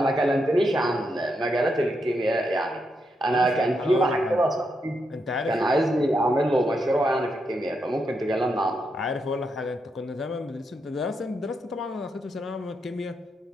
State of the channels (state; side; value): normal; both; correlation 0.82